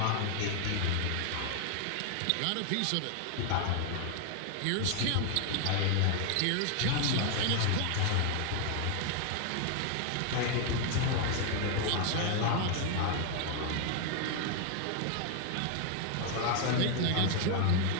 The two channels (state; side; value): different; both; correlation 0.00